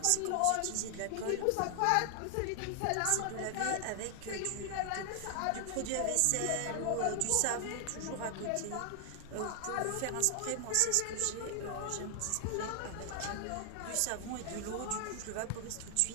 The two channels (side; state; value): both; different; correlation 0.00